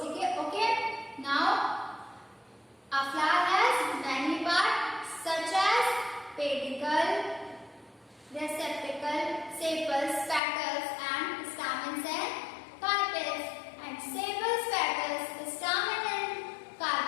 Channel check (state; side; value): drops out; right; at 10.4 s